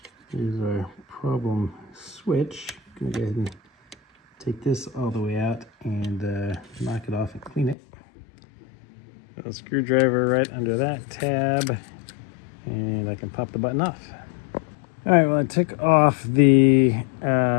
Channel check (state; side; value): drops out; right; at 7.8 s